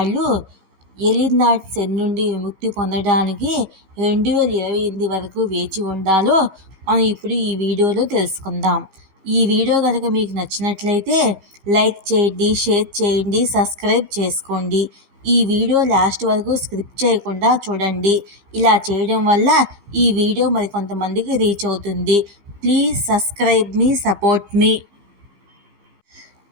ఏలినాటి శని నుండి విముక్తి పొందడానికి 2028 వరకు వేచి ఉండాలో మనం ఇప్పుడు ఈ వీడియోలో తెలుసుకుందాం. ఈ వీడియో కనుక మీకు నచ్చినట్లయితే లైక్ చేయండి, షేర్ చేయండి, సబ్స్క్రైబ్ చేసుకోండి. ఈ వీడియో లాస్ట్ వరకు స్కిప్ చేయకుండా చూడండి. ఇలా చేయడం వల్ల ఈ వీడియో మరికొంతమందికి రీచ్ అవుతుంది. ప్లీజ్ సబ్స్క్రైబ్ మీ, సపోర్ట్ మీ.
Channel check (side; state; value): left; late; 15 ms